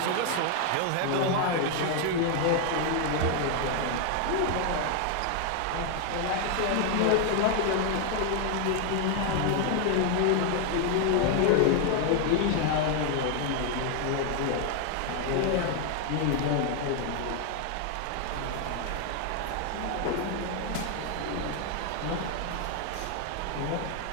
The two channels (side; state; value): both; different; correlation 0.00